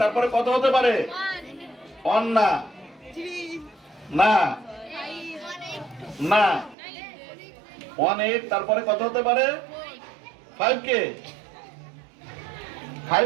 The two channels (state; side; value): drops out; left; at 6.8 s